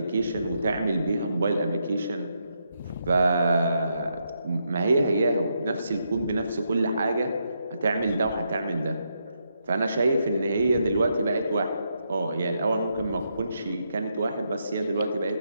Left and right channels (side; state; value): both; inverted; correlation -0.80